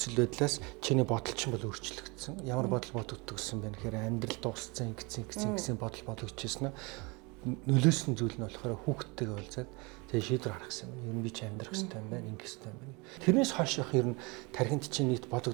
байдлаас чиний бодол чинь бол өөрчлөгдсөн. Ямар бодол бодогддог гэсэн бэ гэхээр амьдрал дууссан гэсэн бодол бодогдчихсэн нь нөлөөсөн зүйл нь болохоор хүүхдтэйгээ уулзаад тэгээ шийдвэр гаргах гэсэн юм. Ер нь би ч амьдрах хэрэгтэй юм байна, ингэх хэрэгтэй юм байна. Тэрнээс хойш яг ер нь тархинд чинь нийт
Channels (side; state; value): left; quieter; 27.9 dB